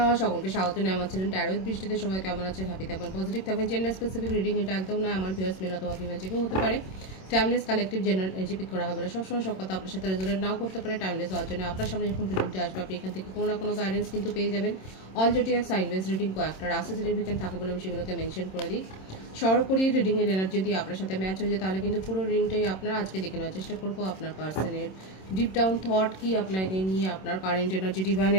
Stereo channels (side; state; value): right; late; 26 ms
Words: সকলকে স্বাগত জানাই আমার চ্যানেল ট্যারো উইথ বৃষ্টিতে। সবাই কেমন আছেন? হ্যাপি থাকবেন, পজিটিভ থাকবেন। জেন্ডার স্পেসিফিক রিডিং এটা একদম নয়, আমার ভিউয়ার্স মেল অথবা ফিমেল যে কেউ হতে পারে। Timeless collective general energy pick করা হবে না, সবসময় সব কথা আপনার সাথে রেজোনেট নাও করতে পারে। টাইমলেস হওয়ার জন্য আপনার সামনে যখন রিডিংটা আসবে আপনি এখান থেকে কোনো না কোনো গাইডেন্স কিন্তু পেয়ে যাবেন। All zodiac sign base reading কয়েকটা রাশি সিগনিফিকেন্ট থাকে বলে আমি সেগুলোকে মেনশন করে দিই। সর্বোপরি রিডিংয়ের এনার্জি যদি আপনার সাথে ম্যাচ হয়ে যায় তাহলে কিন্তু পুরো রিডিংটাই আপনার আজকে দেখে নেওয়ার চেষ্টা করবো। আপনার পার্সনের ডিপ ডাউন থট কি, আপনাকে নিয়ে আপনার কারেন্ট এনার্জি,